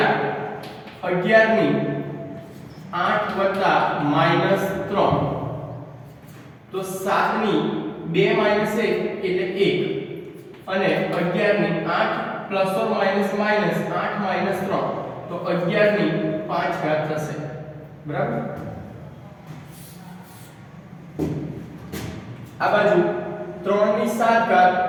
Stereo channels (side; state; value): both; identical; correlation 1.00